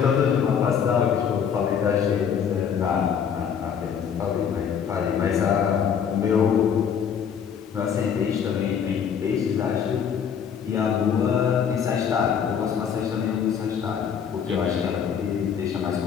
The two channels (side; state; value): right; quieter; 7.6 dB